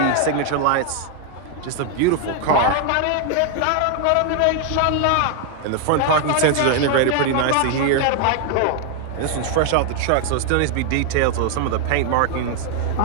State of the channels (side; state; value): both; different; correlation 0.00